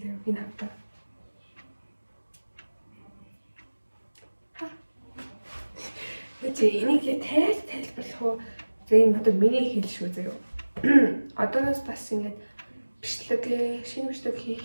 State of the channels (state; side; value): inverted; both; correlation -1.00